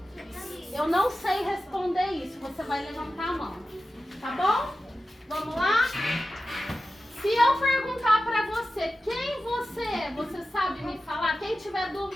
Eu não sei responder isso, você vai levantar a mão, tá bom? Vamos lá? Se eu perguntar pra você quem você é, você sabe me falar? Quem tiver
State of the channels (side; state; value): both; normal; correlation 0.93